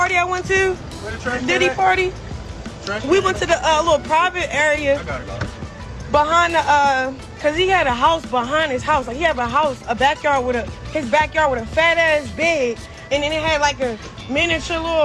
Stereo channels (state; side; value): identical; both; correlation 1.00